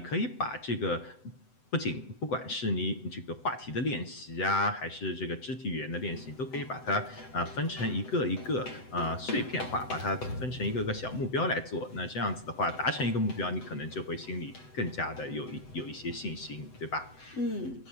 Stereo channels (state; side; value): late; right; 7.9 ms